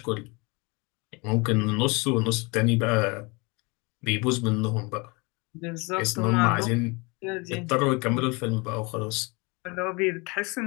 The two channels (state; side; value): quieter; right; 28.1 dB